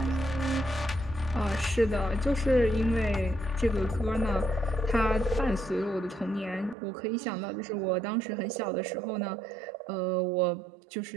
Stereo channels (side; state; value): left; drops out; at 6.8 s